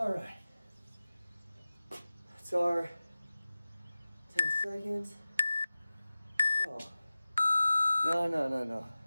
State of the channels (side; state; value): both; inverted; correlation -0.96